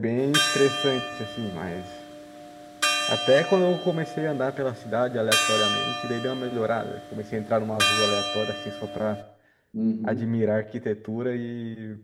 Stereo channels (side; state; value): both; identical; correlation 1.00